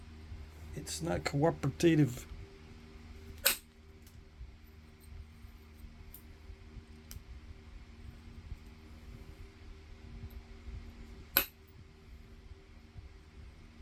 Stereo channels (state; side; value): identical; both; correlation 1.00